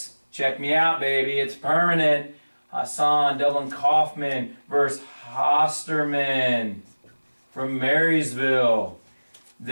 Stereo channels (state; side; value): inverted; both; correlation -1.00